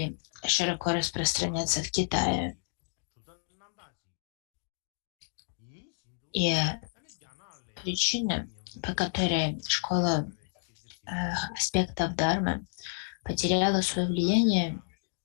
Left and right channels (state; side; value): silent; right; 57 dB below the other